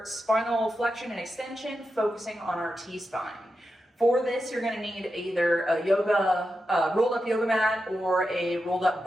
spinal flexion and extension, focusing on our T-spine. For this, you're going to need either a rolled up yoga mat or a rolled up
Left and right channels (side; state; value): both; normal; correlation 0.89